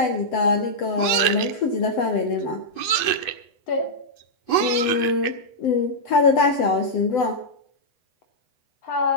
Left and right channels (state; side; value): late; right; 8.0 ms